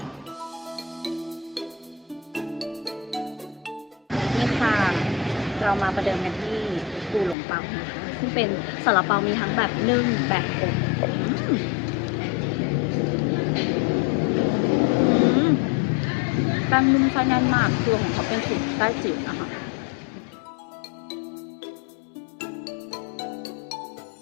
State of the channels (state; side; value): drops out; right; at 7.4 s